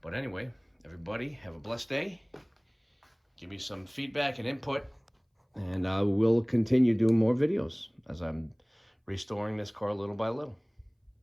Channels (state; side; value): identical; both; correlation 1.00